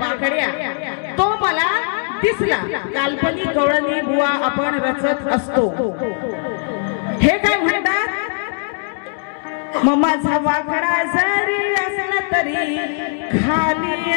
तो मला दिसला. काल्पनिक गवळणी बुवा आपण रचत असतो. हे काय म्हणतात, मग माझा वाकडा जरी असला तरी खाली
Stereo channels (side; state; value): right; silent; 57 dB below the other